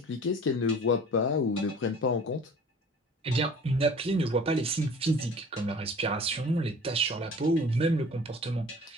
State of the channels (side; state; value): both; normal; correlation 0.45